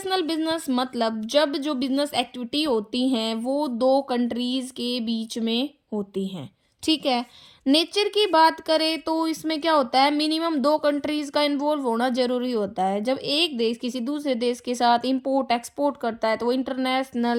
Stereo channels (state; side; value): identical; both; correlation 1.00